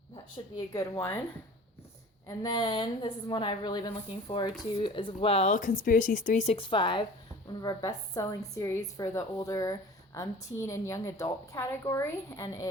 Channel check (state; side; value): normal; both; correlation 0.43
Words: that should be a good one. And then this is one I've really been looking forward to as well, Conspiracies 365, one of our best-selling series for the older teen and young adult category, and